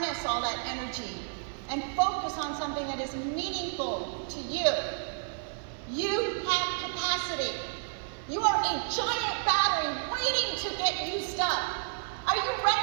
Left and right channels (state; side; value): silent; left; digital silence